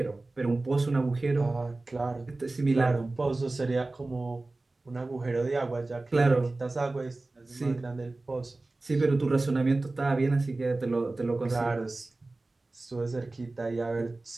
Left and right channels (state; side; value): quieter; left; 3.1 dB